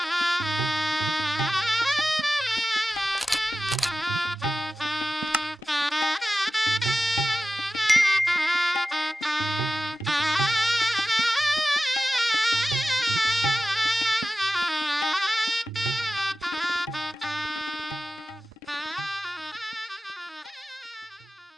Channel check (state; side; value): normal; both; correlation 0.95